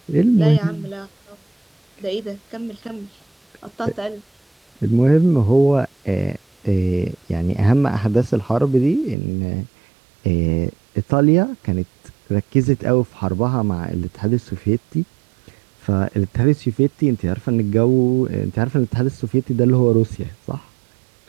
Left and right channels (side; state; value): left; drops out; at 9.2 s